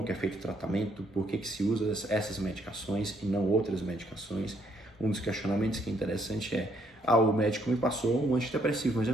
que é feito o tratamento, por que se usa essas medicações e não outras medicações. Um dos questionamentos que é interessante é: o médico me passou um antidepressivo, mas eu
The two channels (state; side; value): normal; both; correlation 0.70